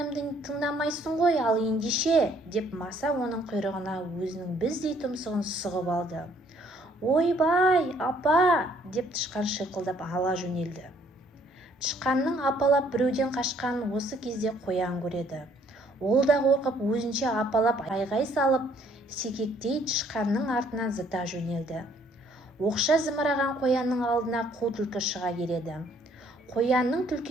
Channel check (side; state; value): both; normal; correlation 0.63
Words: тыңдамайсың ғой, ал ендеше, деп маса оның құйрығына өзінің біздей тұмсығын сұғып алды. Ойбай, апа, деп тышқан шиқылдап ала жөнелді. Тышқанның апалап біреуден қашқанын осы кезде қоян көреді. Ол да қорқып өзінше апалап айғай салып, секектей тышқанның артынан зыта жөнелді. Оқша зымыраған қоянның алдына қу түлкі шыға келеді. Қоянның